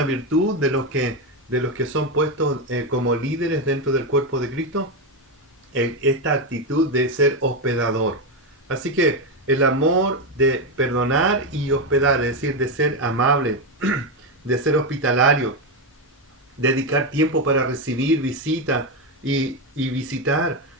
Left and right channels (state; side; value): normal; both; correlation 0.09